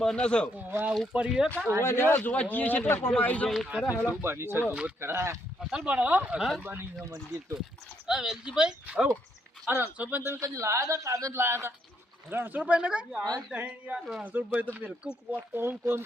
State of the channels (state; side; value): normal; both; correlation 0.74